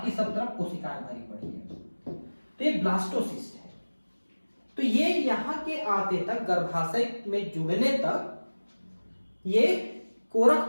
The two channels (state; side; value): inverted; both; correlation -1.00